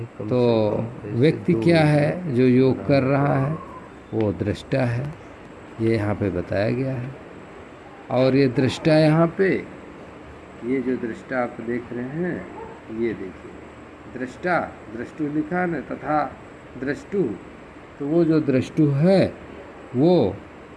तो व्यक्ति क्या है जो योग कर रहा है? वो दृष्टा है। ये यहाँ पे बताया गया है। और ये दृष्टा यहाँ पे, ये जो दृष्टा आप देख रहे हैं, ये देखिए दृष्टा, दृष्टु लिखा न, तथा दृष्टु। तो वो जो दृष्टु है वो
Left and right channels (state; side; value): identical; both; correlation 1.00